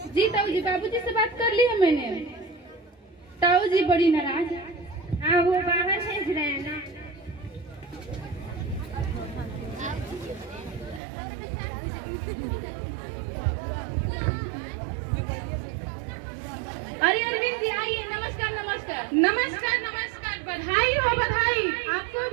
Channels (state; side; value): drops out; left; at 11.0 s